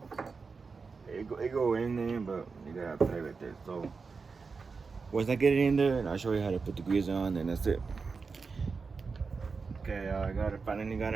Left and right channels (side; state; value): left; quieter; 4.8 dB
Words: It go in there, but you gotta play with it. So once I get it in there, and I'll show you how to put the grease on, and that's it. Okay, I finally got